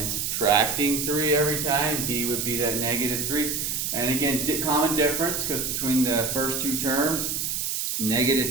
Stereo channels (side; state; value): right; noise; hiss, 1 dB below the sound